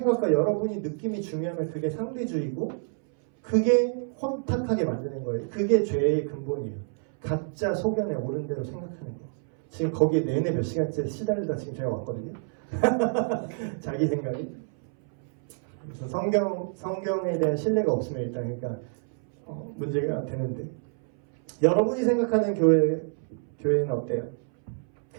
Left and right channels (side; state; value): left; silent; 60 dB below the other